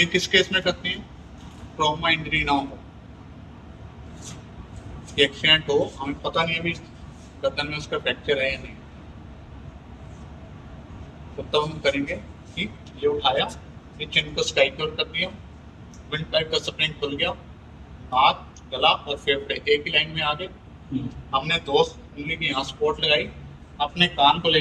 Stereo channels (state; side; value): identical; both; correlation 1.00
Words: किस केस में करते हैं, ट्रॉमा इंजरी ना हो, एक्सीडेंट हो, हमें पता नहीं अभी गर्दन में उसका फ्रैक्चर है या नहीं, तो तब हम करेंगे कि ये उठाया, ये चिन को स्काइक्योर कर दिया, विंड पाइप का स्प्रिंग खुल गया, हाथ, गला और फेफड़े एक ही लाइन में आ गए। हमने 2 उंगली की यहाँ स्पॉट लगाई, अपने कान को ले